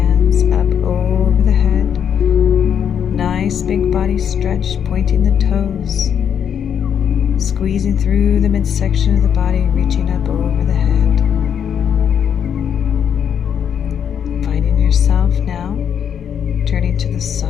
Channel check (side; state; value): right; quieter; 8.3 dB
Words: up over the head, nice big body stretch, pointing the toes, squeezing through the midsection of the body, reaching up over the head. Finding yourself now turning to the